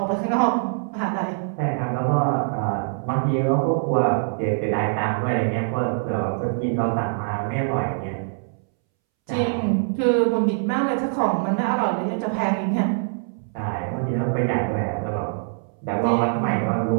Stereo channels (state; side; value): silent; left; 63 dB below the other